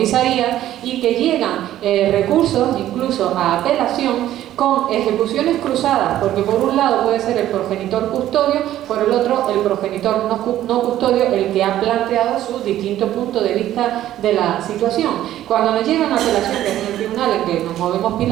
y que llegan recursos incluso a apelación con ejecuciones cruzadas, porque por un lado puede ser el progenitor custodio, por el otro el progenitor no custodio, el que ha planteado su distinto punto de vista de la situación. Cuando nos llegan apelaciones en el tribunal en que nos movemos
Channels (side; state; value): left; quieter; 12.9 dB